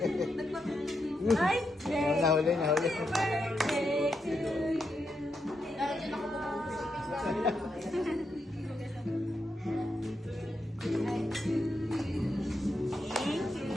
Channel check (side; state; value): both; normal; correlation 0.83